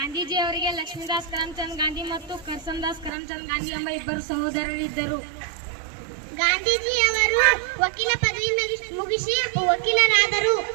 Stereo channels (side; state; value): left; drops out; at 3.1 s